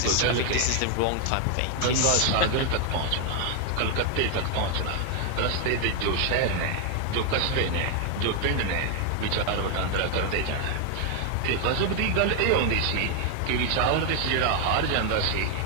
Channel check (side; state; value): both; different; correlation 0.00